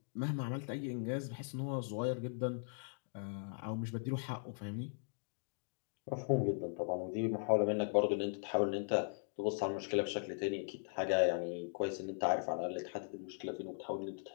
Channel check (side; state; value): right; silent; digital silence